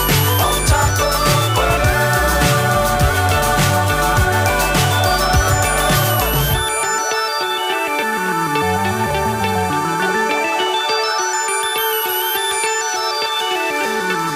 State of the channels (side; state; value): both; identical; correlation 1.00